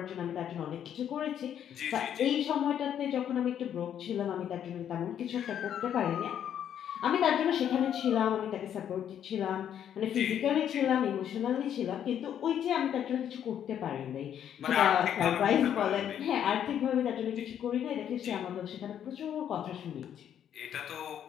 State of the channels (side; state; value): right; quieter; 9.6 dB